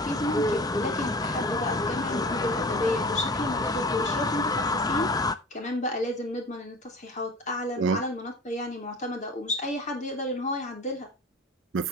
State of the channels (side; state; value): both; normal; correlation 0.39